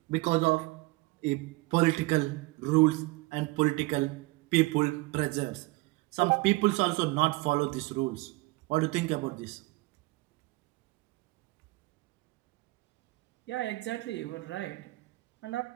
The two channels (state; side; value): quieter; left; 23.1 dB